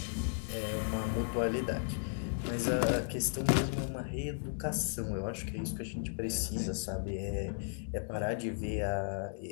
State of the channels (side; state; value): right; silent; digital silence